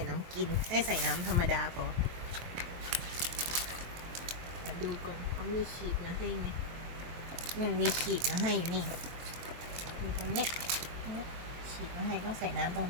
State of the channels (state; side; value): late; left; 23 ms